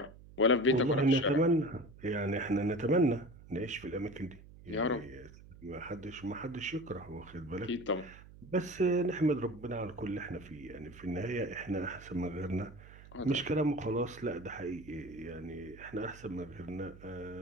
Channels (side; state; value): right; noise; hum, 19 dB below the sound